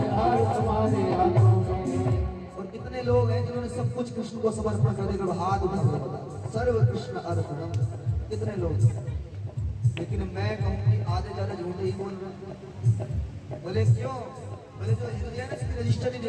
हार तुम्हारे हाथों में। और कितने लोग हैं जिन्होंने सब कुछ कृष्ण को समर्पण कर दिया, हाथ उठा सर्व कृष्ण अर्पणम, कितने लोग। लेकिन मैं कहूँ कि आधे ज्यादा झूठे ही बोल रहे हैं। बोले क्यों? बोले जो हृदय है ना इसकी रजिस्टर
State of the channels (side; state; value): both; identical; correlation 1.00